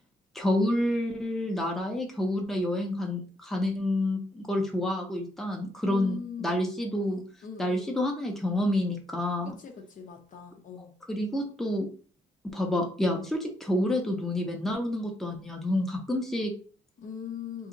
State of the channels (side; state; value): both; normal; correlation 0.77